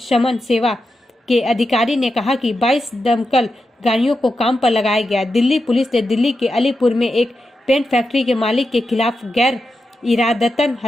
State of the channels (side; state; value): both; normal; correlation 0.88